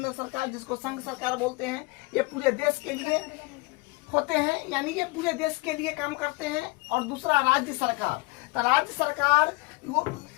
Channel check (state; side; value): quieter; right; 25.4 dB